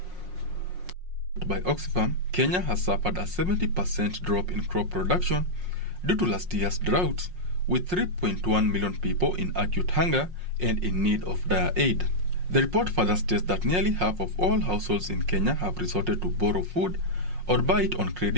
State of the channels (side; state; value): left; late; 5.5 ms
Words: By Oxfam, Kenya has suffered a 70% drop in crop production due to last year's drought, with 3.1 million people in acute hunger and in need of dire aid. The report further states that nearly half of all households in Kenya have resorted to borrow food or buy it on